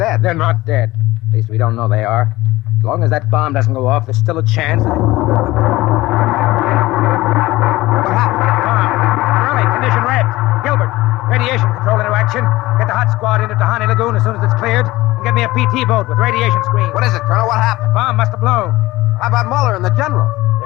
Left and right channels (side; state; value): right; quieter; 18.5 dB